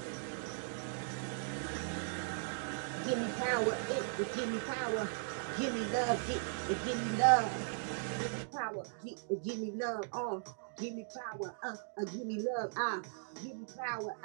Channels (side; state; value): left; silent; digital silence